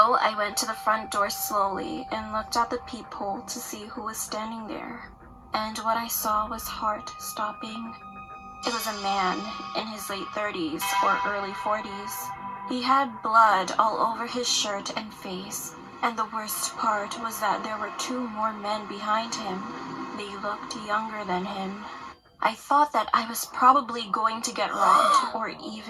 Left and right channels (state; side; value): identical; both; correlation 1.00